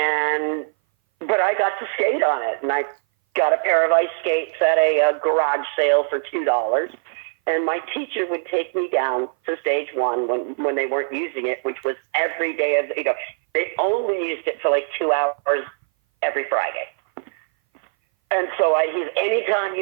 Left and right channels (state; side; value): silent; left; 59 dB below the other